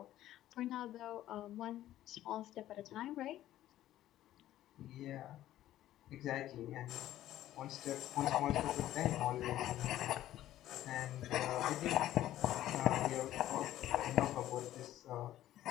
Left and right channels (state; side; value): quieter; right; 13.5 dB